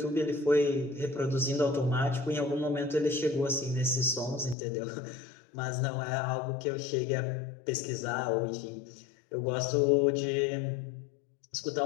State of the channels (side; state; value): right; drops out; at 4.5 s